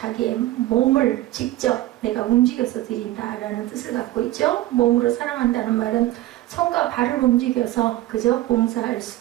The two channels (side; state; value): left; quieter; 15.7 dB